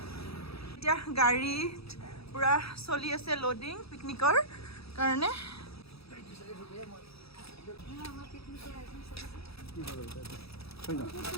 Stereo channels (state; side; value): late; right; 0.77 ms